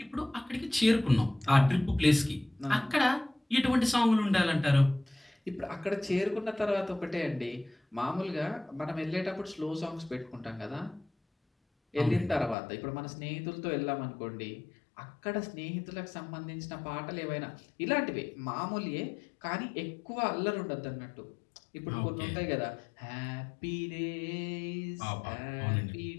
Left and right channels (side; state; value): right; drops out; at 12.6 s